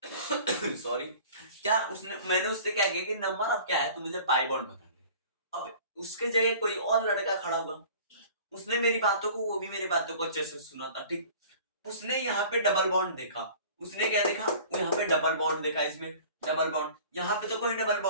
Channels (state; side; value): inverted; both; correlation -0.46